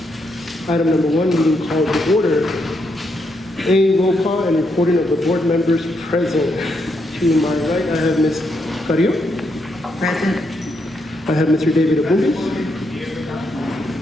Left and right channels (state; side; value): normal; both; correlation 0.79